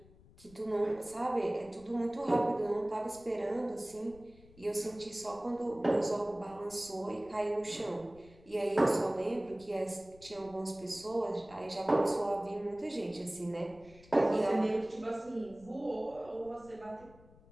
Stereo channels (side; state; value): left; noise; rumble, 23 dB below the sound